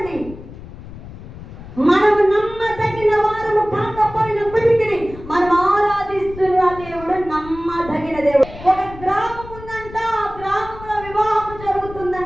మనము నమ్మదగిన వారము కాకపోయినప్పటికీ మనం ఆరాధిస్తున్న దేవుడు నమ్మదగిన దేవుడు. ఒక గ్రామం ఉందంట, ఆ గ్రామంలో వివాహం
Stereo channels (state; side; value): noise; left; rumble, 15 dB below the sound